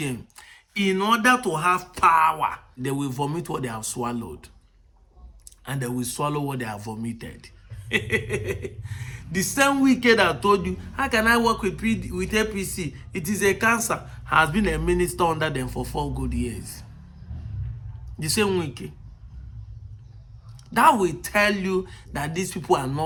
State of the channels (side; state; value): both; identical; correlation 1.00